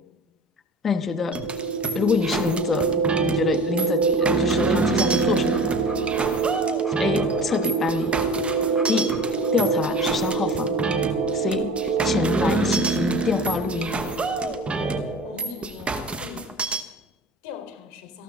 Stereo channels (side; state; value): both; normal; correlation 0.38